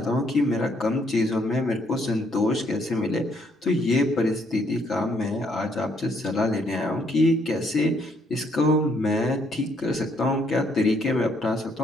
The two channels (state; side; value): normal; both; correlation 0.70